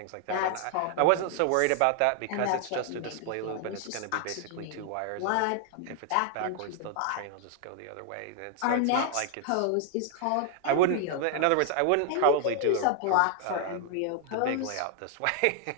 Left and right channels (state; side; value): different; both; correlation 0.00